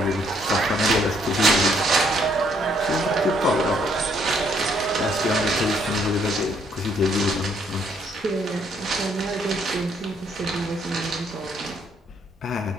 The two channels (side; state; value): both; normal; correlation 0.69